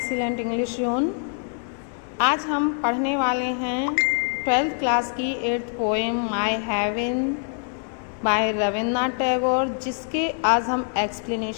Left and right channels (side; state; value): right; silent; 55 dB below the other